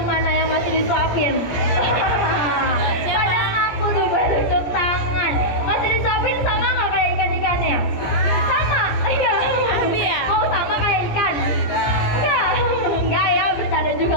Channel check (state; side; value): late; right; 17 ms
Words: mana yang masih disuapin? Pada aku tuh tunjuk tangan. Masih disuapin sama nggak kayak ikan-ikannya? Sama? Iya. Abi ya? Mau sama kayak ikan? Enggak ya, bercanda juga